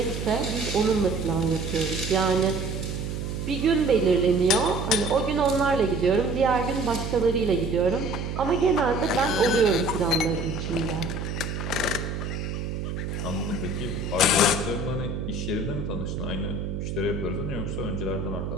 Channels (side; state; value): right; noise; hum, 4 dB below the sound